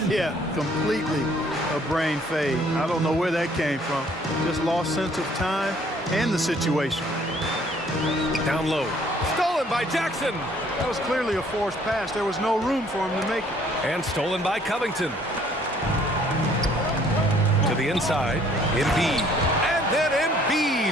yeah, completely a brain fade. I don't know where that came from. Just lost sense of time and the situation. Down low. Stolen by Jackson. That was clearly a forced pass. There was no room for him to make it. And stolen by Covington. To the inside, Embiid. And then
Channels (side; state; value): both; normal; correlation 0.60